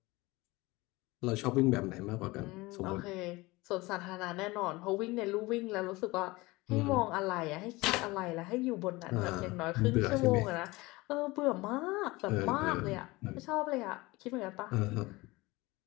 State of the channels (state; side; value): quieter; right; 21.9 dB